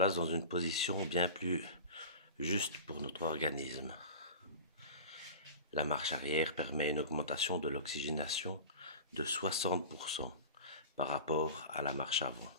dans une position bien plus juste pour notre organisme. La marche arrière permet une augmentation de l'oxygénation de 60% par rapport à la marche avant.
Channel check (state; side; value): inverted; both; correlation -0.34